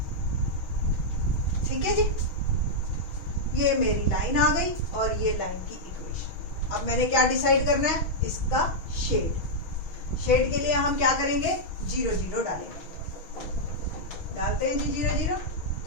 ठीक है जी, ये मेरी लाइन आ गई और ये लाइन की इक्वेशन। अब मैंने क्या डिसाइड करना है, इसका शेड। शेड के लिए हम क्या करेंगे, 0 0 डालेंगे। डालते हैं जी 0 0।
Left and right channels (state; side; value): late; right; 6.2 ms